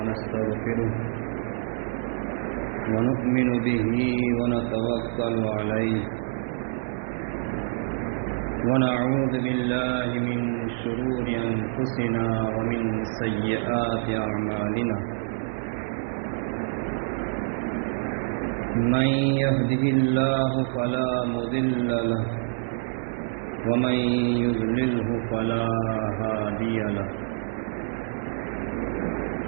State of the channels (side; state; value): left; silent; 61 dB below the other